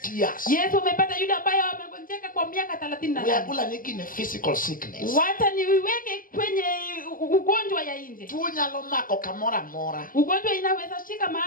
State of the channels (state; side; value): late; right; 0.41 ms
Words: years. Yesu umepata yule ambaye amegonjeka kwa miaka 38. Uyagula nyingine physical sickness. Wacha niweke kwenye ugonjwa ya nje. Tu nyalo mako kamora mora. Ugonjwa inaweza shika